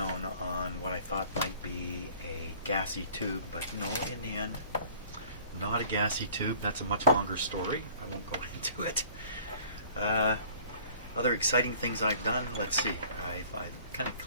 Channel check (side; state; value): both; inverted; correlation -0.51